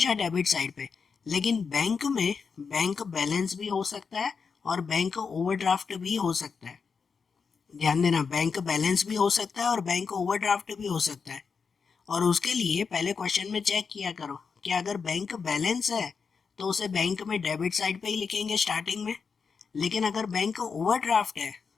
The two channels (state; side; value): quieter; right; 5.5 dB